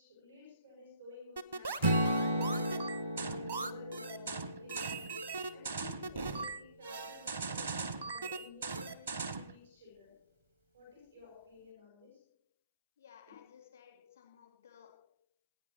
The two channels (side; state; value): both; inverted; correlation -0.63